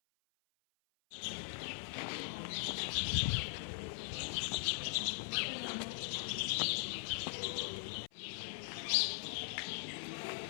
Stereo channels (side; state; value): right; silent; 51 dB below the other